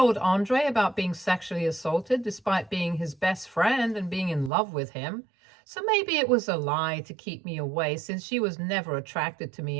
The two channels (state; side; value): drops out; left; at 4.5 s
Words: Andre about being sexually assaulted despite being his best friend and being in love with him. So maybe it was a lie to keep me away since she was never attracted to me